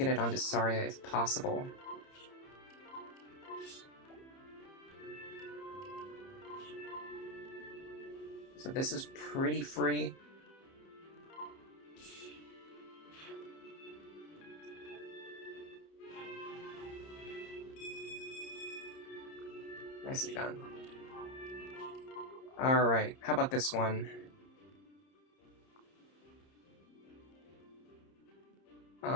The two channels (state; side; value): late; right; 30 ms